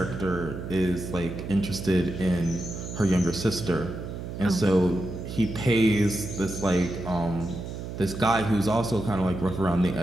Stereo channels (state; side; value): noise; right; hum, 8 dB below the sound